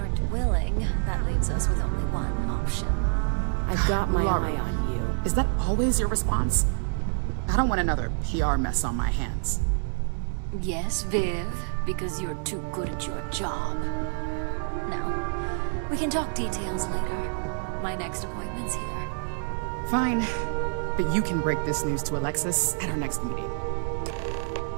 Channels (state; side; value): silent; left; 60 dB below the other